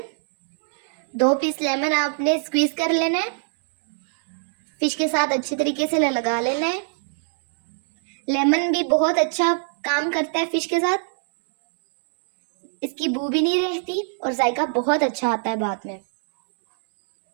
2 पीस लेमन आपने स्क्वीज कर लेना है, फिश के साथ अच्छे तरीके से लगा लेना है। लेमन भी बहुत अच्छा काम करता है फिश के साथ, इसकी बू भी नहीं रहती और जायका बहुत अच्छा आता है बाद में।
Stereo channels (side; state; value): left; silent; 64 dB below the other